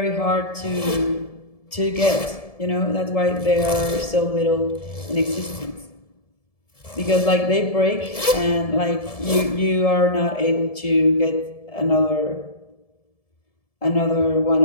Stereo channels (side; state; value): right; late; 1.7 ms